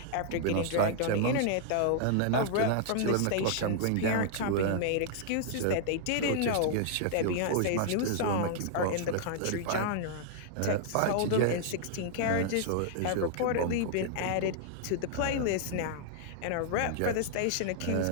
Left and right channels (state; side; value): different; both; correlation -0.01